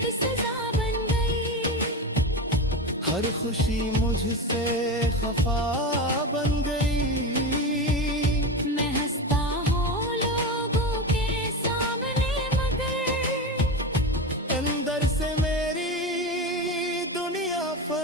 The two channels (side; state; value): both; normal; correlation 0.21